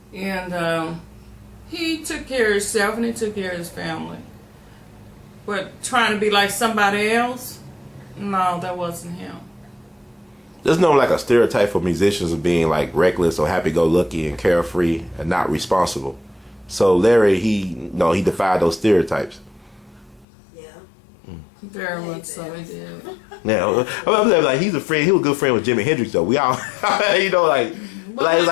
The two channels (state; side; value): drops out; right; at 20.2 s